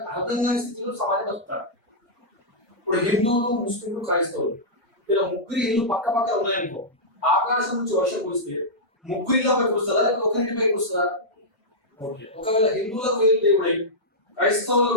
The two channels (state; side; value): normal; both; correlation -0.11